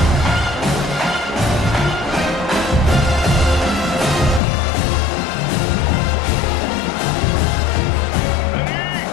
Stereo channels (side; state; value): right; drops out; at 4.4 s